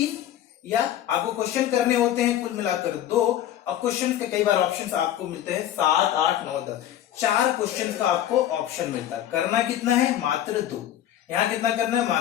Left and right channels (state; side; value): quieter; right; 11.8 dB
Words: या आपको क्वेश्चन करने होते हैं, कुल मिलाकर 2। अब क्वेश्चन के कई बार ऑप्शंस आपको मिलते हैं 7, 8, 9, 10। 4 क्वेश्चन का आपको ऑप्शन मिलता है। करना कितना है, मात्र 2। यहां कितना करना है,